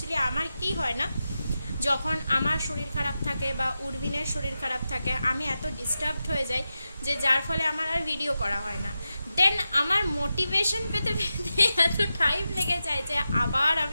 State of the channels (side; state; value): both; inverted; correlation -0.91